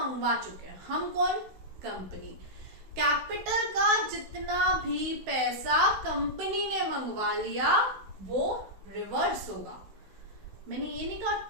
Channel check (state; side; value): late; left; 16 ms